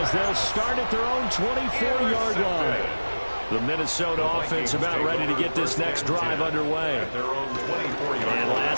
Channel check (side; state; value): both; inverted; correlation -1.00